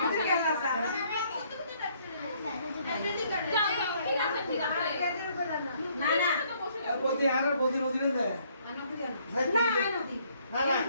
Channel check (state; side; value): inverted; both; correlation -0.65